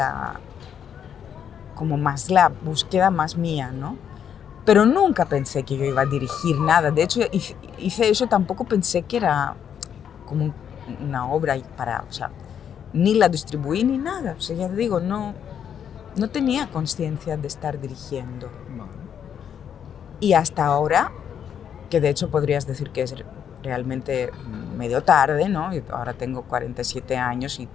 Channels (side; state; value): right; quieter; 8.5 dB